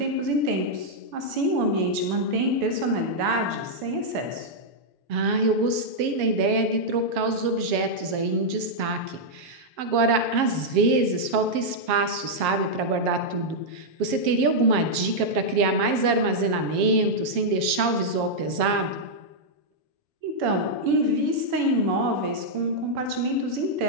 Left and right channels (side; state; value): left; late; 7.5 ms